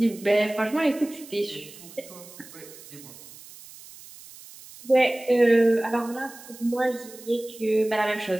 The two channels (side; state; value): right; noise; hiss, 18 dB below the sound